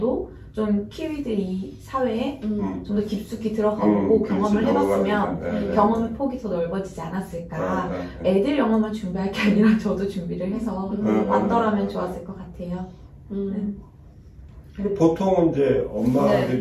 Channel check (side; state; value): both; identical; correlation 1.00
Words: 좀 키위들이 사회에 좀 더 깊숙이 들어가보고 경험을 해봤으면 경험의 폭이 더 넓어지지 않았을까. 애들 영어만 준비할 게 아니라 저도 준비를 해서 왔더라면 좋았을 것 같아요. 근데 보통 이제